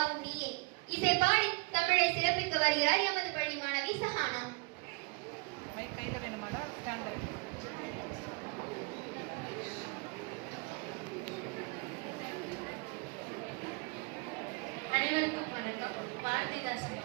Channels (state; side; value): quieter; left; 29.0 dB